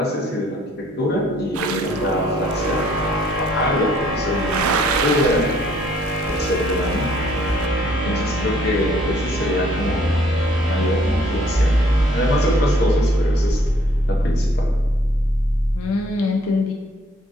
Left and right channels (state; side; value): normal; both; correlation 0.62